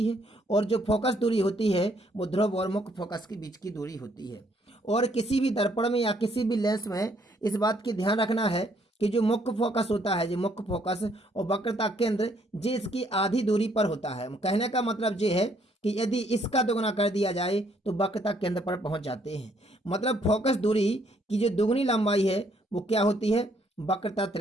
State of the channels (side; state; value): both; normal; correlation 0.68